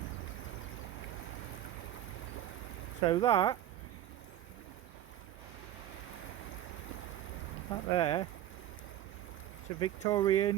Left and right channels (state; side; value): quieter; left; 12.2 dB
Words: So that there, it's a